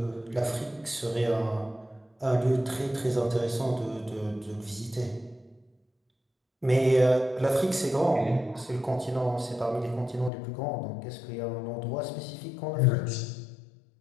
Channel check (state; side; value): drops out; right; at 10.3 s